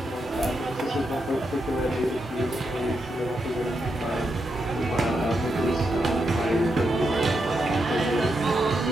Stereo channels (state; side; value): normal; both; correlation 0.84